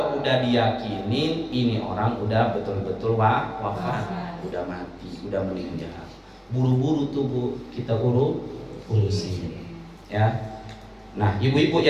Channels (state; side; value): identical; both; correlation 1.00